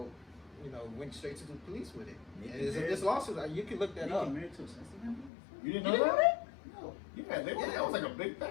went straight to the police with it. Nicki And it's married- this lawsuit, you can look that up. married to a sensitive man? You didn't You know didn't that? No. Yeah, that was like a big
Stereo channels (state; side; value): drops out; right; at 5.3 s